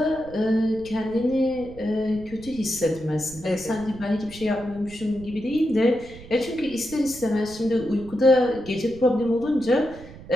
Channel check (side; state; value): right; noise; rumble, 17 dB below the sound